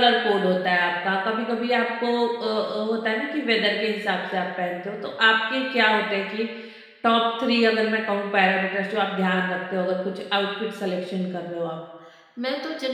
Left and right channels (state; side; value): identical; both; correlation 1.00